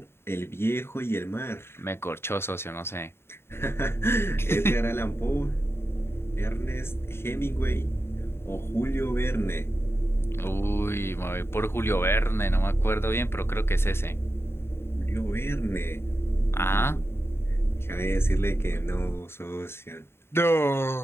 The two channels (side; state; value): right; late; 0.12 ms